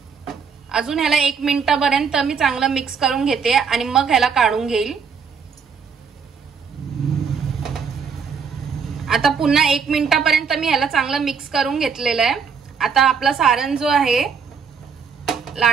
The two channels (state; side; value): quieter; left; 6.1 dB